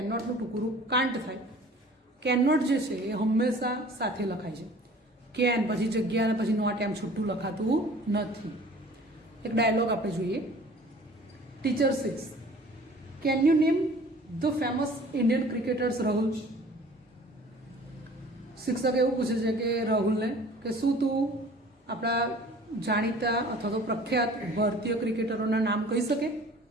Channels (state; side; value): normal; both; correlation 0.48